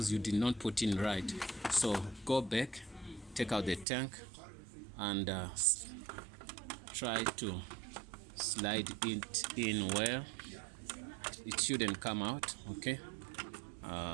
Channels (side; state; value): left; drops out; at 3.9 s